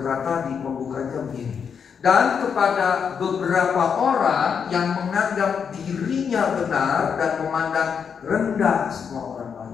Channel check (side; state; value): right; quieter; 6.8 dB